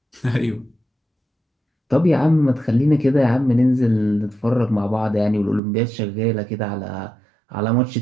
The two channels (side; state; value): left; drops out; at 5.6 s